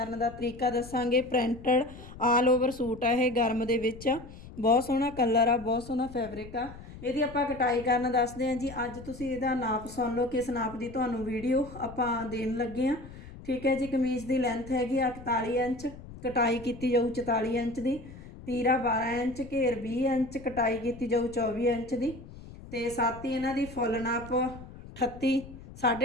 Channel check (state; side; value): noise; left; rumble, 16 dB below the sound